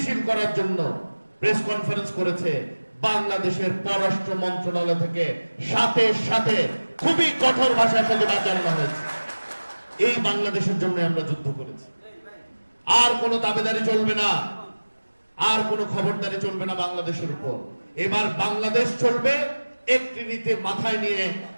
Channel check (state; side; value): inverted; both; correlation -1.00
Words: করার জন্য প্রেস কনফারেন্স করেছে, বাংলাদেশের পররাষ্ট্র মন্ত্রণালয় থেকে সাথে সাথে খুবই কঠোর ভাষায় সাথে জানানো হয়েছে এই বাংলাদেশের জন্য আমরা যুদ্ধ করেছি। আর কোনো দাবিদারি চলবে না, আর কোনো খবরদারি চলবে না বাংলাদেশের উপর। এবার বাংলাদেশ চলবে একটি নীতি মাথায় নিয়ে,